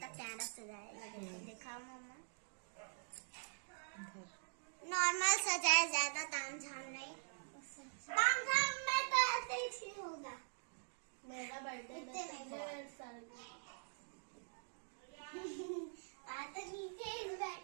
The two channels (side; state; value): left; silent; digital silence